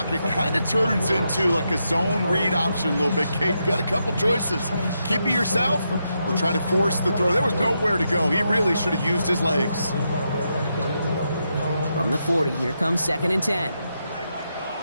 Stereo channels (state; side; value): inverted; both; correlation -0.83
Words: kind of turns into like a zone read option a little bit, Kate. You got a couple choices. Keep it yourself or try to force the throw. There was nowhere to go. He really should have used his legs. From the 40, here comes 2nd and 10.